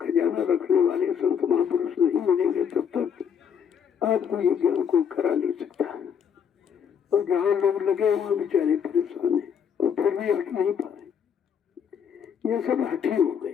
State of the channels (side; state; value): right; quieter; 7.6 dB